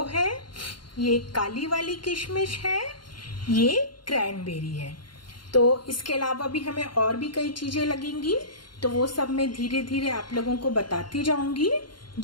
है, ये काली वाली किशमिश है, ये क्रैनबेरी है। तो इसके अलावा भी हमें और भी कई चीज़ें लगेंगी, तो वो सब मैं धीरे धीरे आप लोगों को बताती जाऊंगी।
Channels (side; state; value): right; late; 0.72 ms